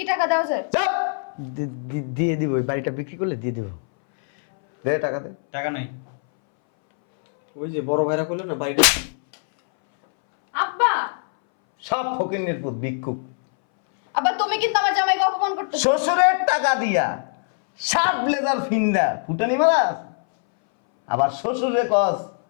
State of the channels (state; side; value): silent; right; 62 dB below the other